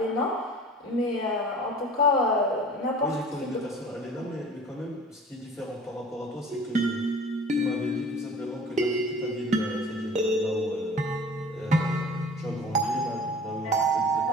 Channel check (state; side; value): normal; both; correlation 0.44